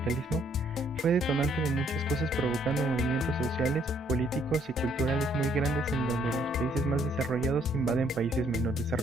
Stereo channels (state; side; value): normal; both; correlation 0.67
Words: fue detonante de muchas cosas, provocando movimientos sociales, políticos y culturales muy grandes en donde los países más desarrollados invaden países menos